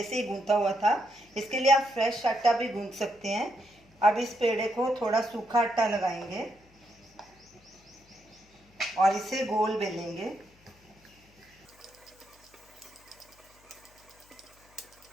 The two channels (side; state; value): left; noise; hum, 29 dB below the sound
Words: से ही गूंथा हुआ था। इसके लिए आप फ्रेश आटा भी गूंथ सकते हैं। अब इस पेड़े को थोड़ा सूखा आटा लगाएंगे और इसे गोल बेलेंगे।